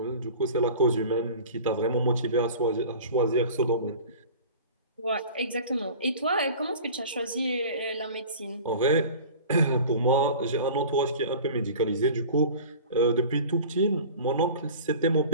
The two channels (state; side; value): inverted; both; correlation -0.40